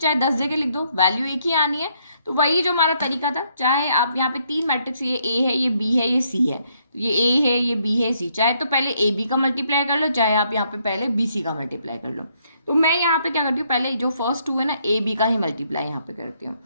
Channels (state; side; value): inverted; both; correlation -0.72